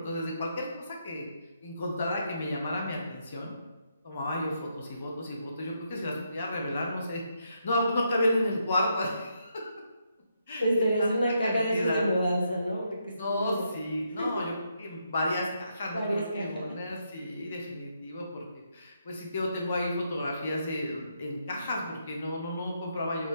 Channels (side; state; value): both; inverted; correlation -0.79